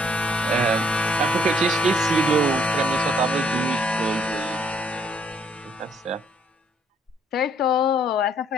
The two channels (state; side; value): normal; both; correlation 0.66